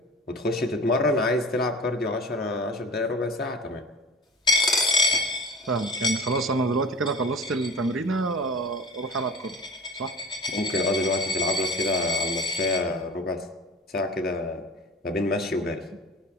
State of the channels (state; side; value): normal; both; correlation 0.38